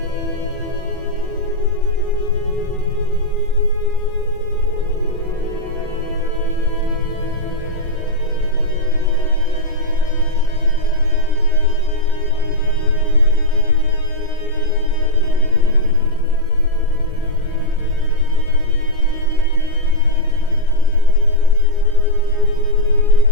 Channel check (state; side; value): normal; both; correlation -0.05